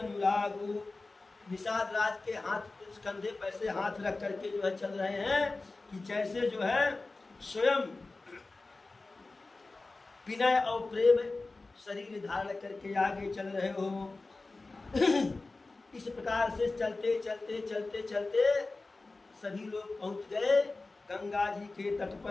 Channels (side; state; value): right; quieter; 3.4 dB